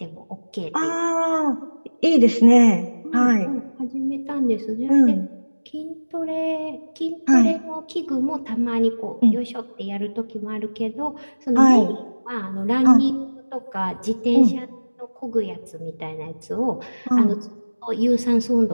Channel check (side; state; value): both; inverted; correlation -1.00